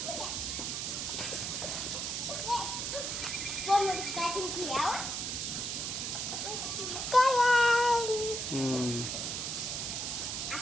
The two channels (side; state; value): right; noise; hiss, 2 dB below the sound